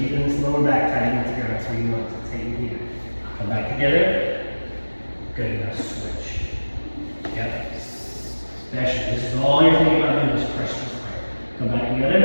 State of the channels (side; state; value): both; inverted; correlation -1.00